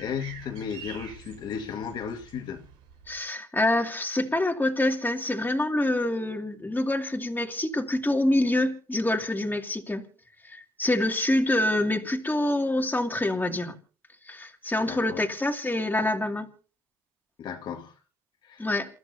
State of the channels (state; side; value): normal; both; correlation 0.78